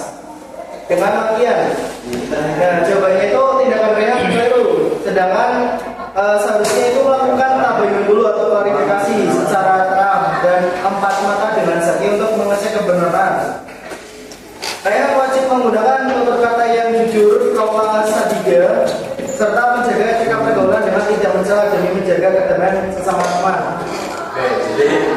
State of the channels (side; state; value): both; identical; correlation 1.00